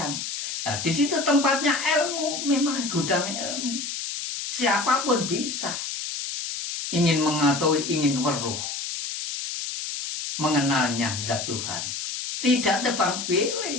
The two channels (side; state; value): left; noise; hiss, 5 dB below the sound